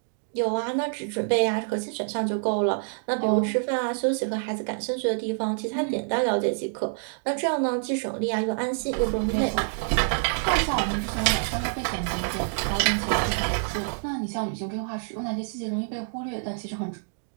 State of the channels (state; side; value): silent; left; digital silence